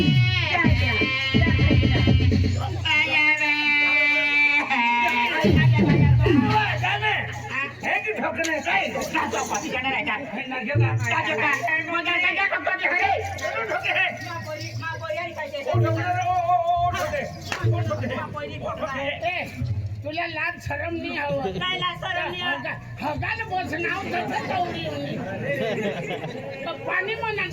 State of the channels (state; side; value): identical; both; correlation 1.00